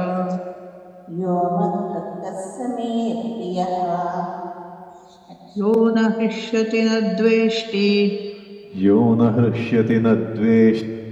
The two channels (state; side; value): identical; both; correlation 1.00